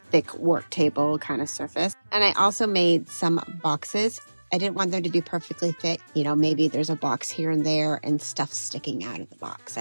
thick work table kind of surface. And I also made some boxes. I didn't want them to be perfectly fit. You know, maybe there's a box here and there and stuff sticking out of the box.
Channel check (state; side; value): inverted; both; correlation -1.00